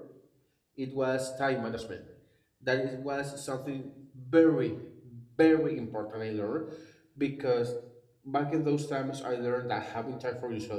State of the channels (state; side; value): identical; both; correlation 1.00